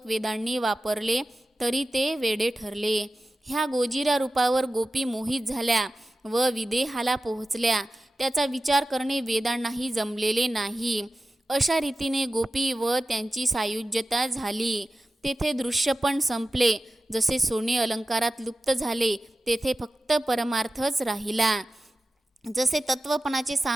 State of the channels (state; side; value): normal; both; correlation 0.94